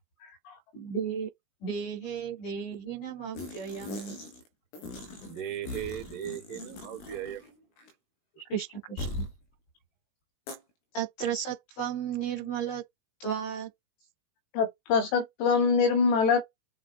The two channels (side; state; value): right; late; 18 ms